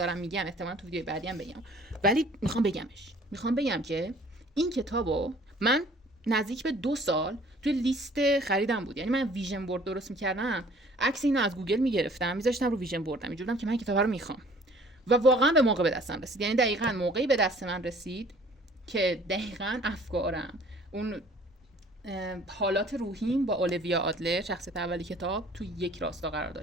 میگم احتمالاً تو ویدیوی بعدی هم بگم، ولی میخوام بگم که این کتابو من نزدیک به 2 سال توی لیست خریدم بود. یعنی من ویژن بورد درست می‌کردم، عکس اینو از گوگل می‌گرفتم می‌ذاشتم رو ویژن بوردم، اینجوریام که من کتاب رو می‌خوام و واقعا به موقع به دستم رسید. یعنی دقیقاً موقعی به دست من رسید که دقیقاً افکارم، اون حالات روحیم با اولویا آدلر شخصیت اولی کتاب تو یک راستا قرار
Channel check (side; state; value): both; normal; correlation 0.53